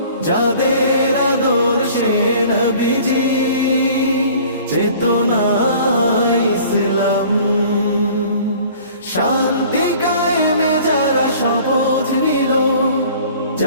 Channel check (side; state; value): both; inverted; correlation -0.49